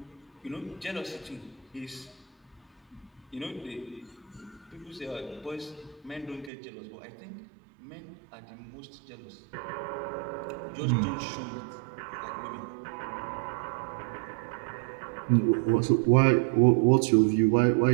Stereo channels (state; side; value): drops out; left; at 6.5 s